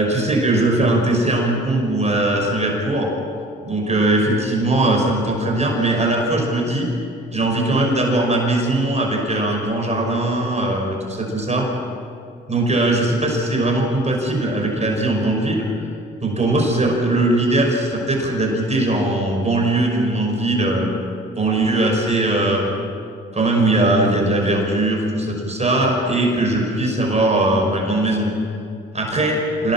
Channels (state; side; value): normal; both; correlation 0.46